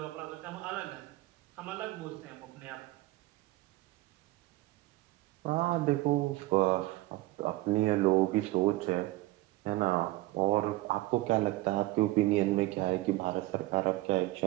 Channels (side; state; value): left; quieter; 18.6 dB